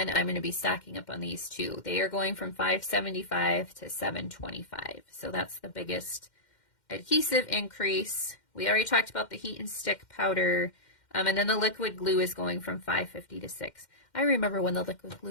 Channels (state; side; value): late; right; 2.1 ms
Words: I'm going to be stocking up on these too. They are going from $5.75 to $7.25. So that's the biggest adhesive increase. We already talked about the heat and stick powder. And then the liquid glue is going from $5.50 to $6. I remember when the liquid